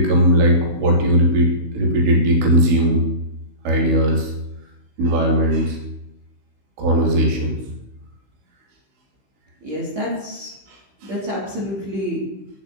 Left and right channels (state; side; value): late; left; 16 ms